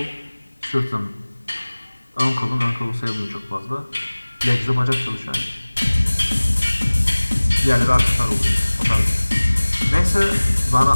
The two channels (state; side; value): inverted; both; correlation -1.00